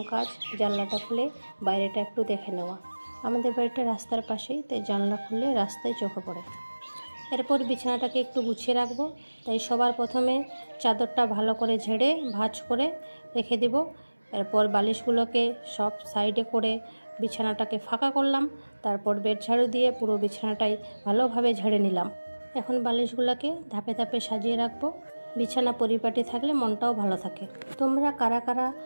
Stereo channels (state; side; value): inverted; both; correlation -1.00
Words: কাজ জানলাটা খুলে বাইরেটা একটু দেখে নেওয়া। আমাদের বাড়িটা রাস্তার পাশেই, তাই জানলা খুললে রাস্তায় চোখে পড়ে। এরপর বিছানাটাকে একটু গুছিয়ে রাখবো, তাই সবার প্রথমে চাদরটা ভালো করে ঝেড়ে ভাঁজ করে রেখে দেব। এরপর বালিশগুলোকে সব সাইডে করে বিছানাটাকে ফাঁকা করলাম। তারপর বেড ঝাড়ু দিয়ে পুরো বিছানাটাই ভালোভাবে ঝেড়ে নিলাম। এখন বালিশগুলোকে ধাপে ধাপে সাজিয়ে রাখবো। বিছানা পরিপাটি থাকলে মনটাও ভালো থাকে। তোমরা কারা কারা